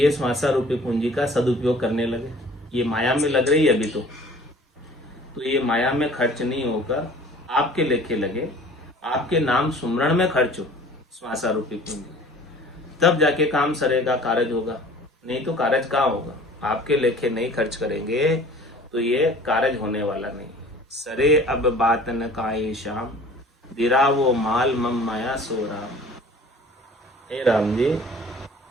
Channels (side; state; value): both; normal; correlation 0.48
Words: श्वासा रूपी पूंजी का सदुपयोग करने लगे। ये माया में लग रही है अभी तो ये माया में खर्च नहीं होकर आपके लेखे लगे, आपके नाम सुमरण में खर्च हो श्वासा रूपी पूंजी, तब जाके काम सरेगा, कारज होगा। नहीं तो कारज कहाँ होगा। आपके लेखे नहीं खर्च करेंगे तो ये कारज होने वाला नहीं। सरे अब बात न काए श्याम, दिरा वो माल मम माया सो राम। हे राम जी,